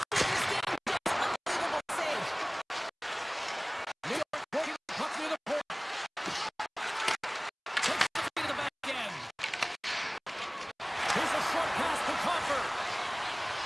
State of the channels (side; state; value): both; identical; correlation 1.00